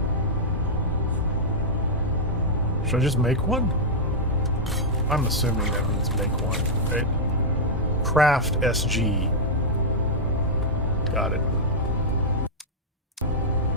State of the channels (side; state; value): both; normal; correlation -0.06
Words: Should I just make one? I'm assuming that means make one, right? Craft SG. Got it.